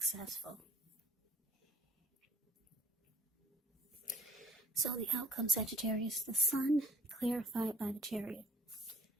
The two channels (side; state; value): both; normal; correlation 0.53